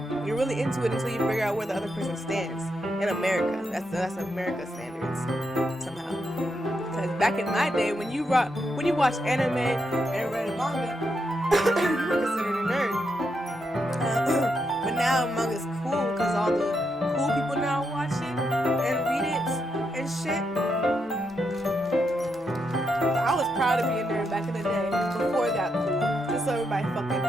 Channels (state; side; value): normal; both; correlation 0.82